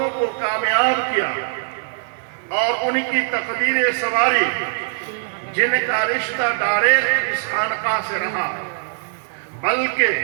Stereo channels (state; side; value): silent; left; 65 dB below the other